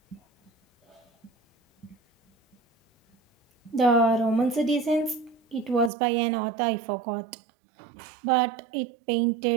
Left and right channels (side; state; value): left; drops out; at 5.9 s